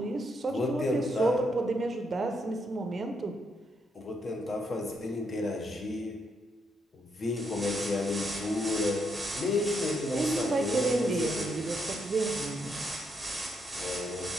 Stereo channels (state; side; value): normal; both; correlation 0.77